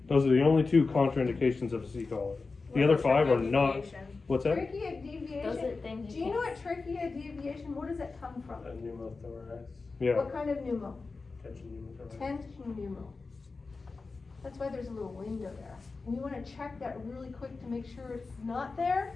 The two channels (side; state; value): right; quieter; 4.1 dB